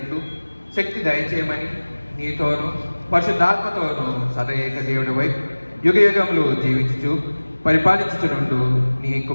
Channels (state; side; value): inverted; both; correlation -1.00